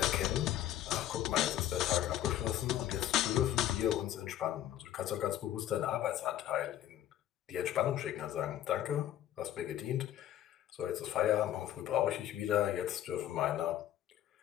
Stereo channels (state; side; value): quieter; right; 12.2 dB